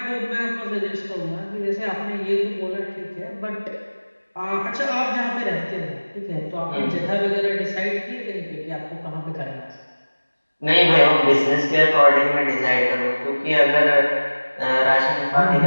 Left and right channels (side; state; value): both; inverted; correlation -1.00